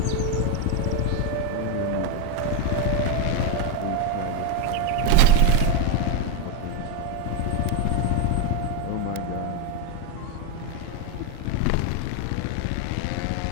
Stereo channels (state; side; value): different; both; correlation 0.01